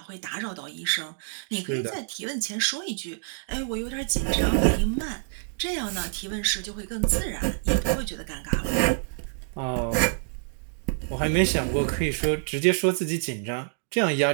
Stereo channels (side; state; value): left; silent; digital silence